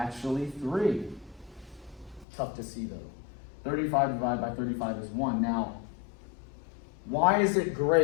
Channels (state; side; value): drops out; right; at 2.2 s